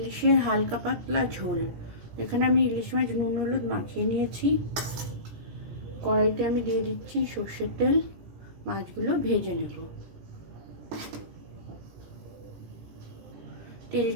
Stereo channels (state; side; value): late; left; 17 ms